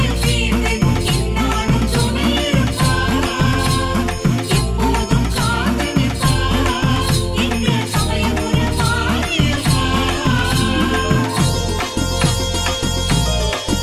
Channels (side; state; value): both; identical; correlation 1.00